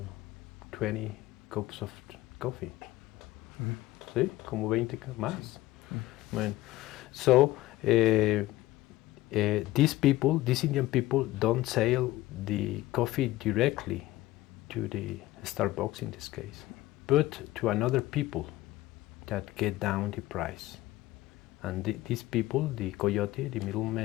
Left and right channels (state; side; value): quieter; right; 16.7 dB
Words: 20 cups of coffee. ¿Sí? Como 20 más. Bueno, so these Indian people don't sell the coffee directly to the Starbucks in this case, but to another people that get down the price. And these people, the coyote, the